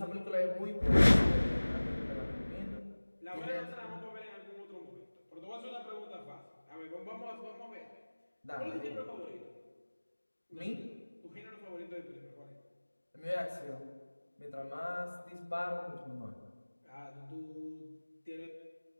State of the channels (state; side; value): inverted; both; correlation -1.00